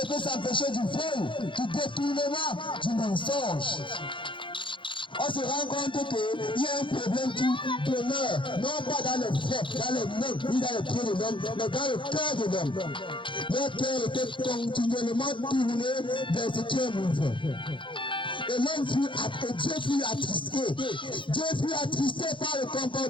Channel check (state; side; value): late; right; 0.24 ms